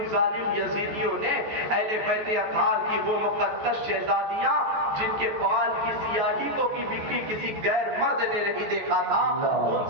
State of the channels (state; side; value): late; left; 14 ms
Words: ظالم یزیدیوں نے اہل بیت اطہار کی وہ مقدس شہزادیاں جن کے بال کی سیاہی کو بھی کسی غیر مرد نے نہیں دیکھا تھا، ان